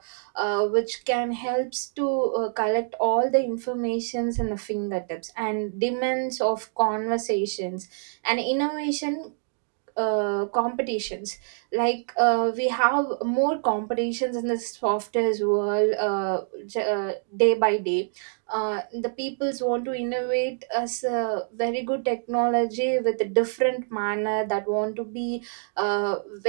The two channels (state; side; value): silent; left; digital silence